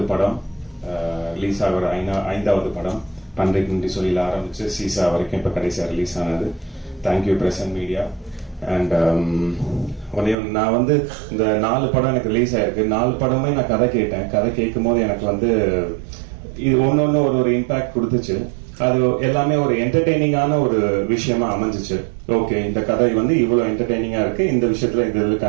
படம், ரிலீஸ் ஆகிற 5வது படம். பன்றைக்கு நன்றி சொல்லியில் ஆரம்பிச்சு சீசா வரைக்கும் இப்போ கடைசியாக ரிலீஸ் ஆனது. Thank you press and media. And நான் வந்து இந்த 4 படம் எனக்கு ரிலீஸ் ஆயிருக்கு. 4 படமே நான் கதை கேட்டேன். கதை கேட்கும் போது எனக்கு வந்து இது ஒன்னொன்னு ஒரு இம்பாக்ட் கொடுத்துச்சு. அது எல்லாமே ஒரு என்டர்டெய்னிங்கான ஒரு விஷயமா அமைஞ்சிச்சு. ஓகே, இந்த கதை வந்து இவ்வளவு என்டர்டெய்னிங்கா இருக்கு, இந்த விஷயத்துல இது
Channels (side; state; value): left; drops out; at 10.4 s